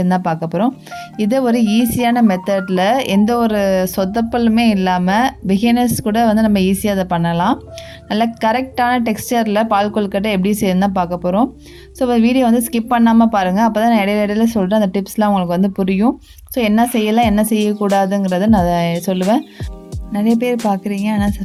தான் பார்க்க போகிறோம். இதை ஒரு ஈஸியான மெத்தடில் எந்த ஒரு சொதப்பலுமே இல்லாமல் பிகினர்ஸ் கூட வந்து நம்ம ஈஸியாக அதை பண்ணலாம். நல்ல கரெக்டான டெக்ஸ்டரில் பால் கொழுக்கட்டை எப்படி செய்யணும் தான் பார்க்க போகிறோம். ஸோ வீடியோ வந்து ஸ்கிப் பண்ணாமல் பாருங்கள். அப்போ தான் நான் இடையில சொல்கிறேன், அந்த டிப்ஸ்லாம் உங்களுக்கு வந்து புரியும். ஸோ என்ன செய்யலாம் என்ன செய்யக்கூடாதுங்கிறத நான் சொல்லுவேன். நிறைய பேர் பார்க்குறீங்க, ஆனால்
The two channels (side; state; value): both; identical; correlation 1.00